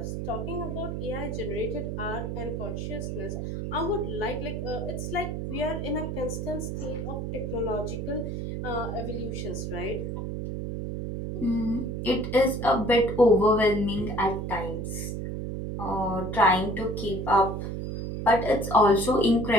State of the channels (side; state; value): right; noise; hum, 4 dB below the sound